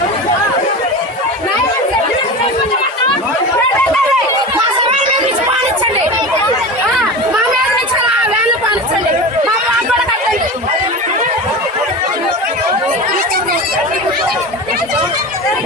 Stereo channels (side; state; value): both; normal; correlation 0.28